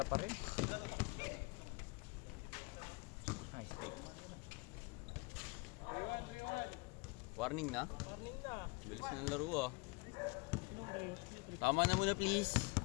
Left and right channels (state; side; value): quieter; right; 27.8 dB